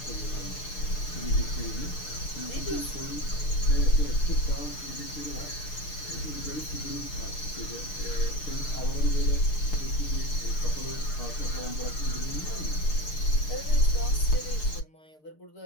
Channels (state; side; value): late; right; 6.6 ms